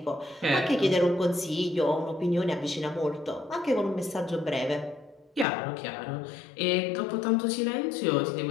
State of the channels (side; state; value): right; drops out; at 5.5 s